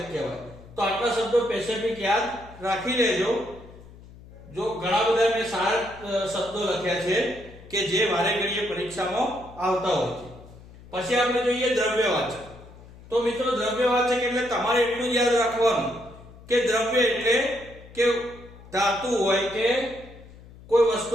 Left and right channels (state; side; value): noise; left; hum, 20 dB below the sound